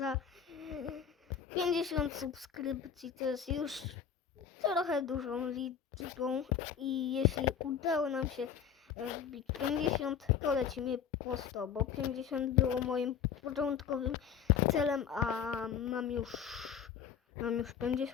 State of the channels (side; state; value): right; quieter; 7.8 dB